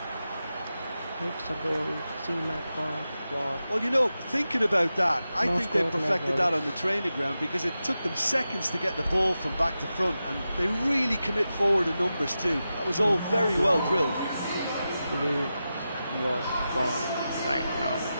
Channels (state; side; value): inverted; both; correlation -0.91